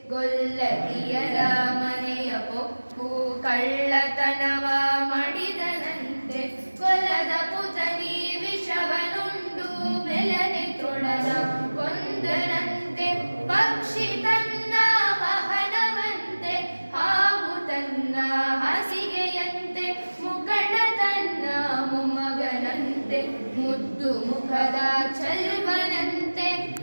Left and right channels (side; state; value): both; inverted; correlation -1.00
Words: ಗೊಲ್ಲತಿಯರ ಮನೆಯ ಪೊಕ್ಕು ಕಳ್ಳತನವ ಮಾಡಿದನಂತೆ ಕೊಲದ ಪುತನಿ ವಿಷವನುಂಡು ಮೆಲನೆ ತೃಣನ ಕೊಂದನಂತೆ ಪಕ್ಷಿ ತನ್ನ ವಾಹನವಂತೆ ಹಾವು ತನ್ನ ಹಾಸಿಗೆಯಂತೆ ಮುಖಂಡ ತನ್ನ ಮೊಮ್ಮಗನಂತೆ ಮುದ್ದು ಮುಖದ ಚಲ್ವನಂತೆ